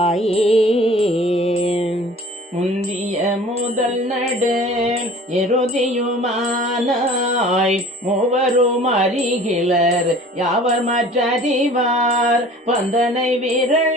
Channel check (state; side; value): normal; both; correlation 0.46